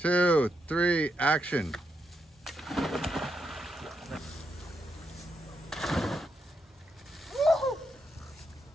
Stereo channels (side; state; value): both; normal; correlation 0.81